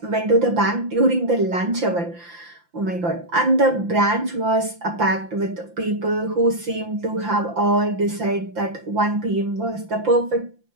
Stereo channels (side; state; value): left; late; 5.8 ms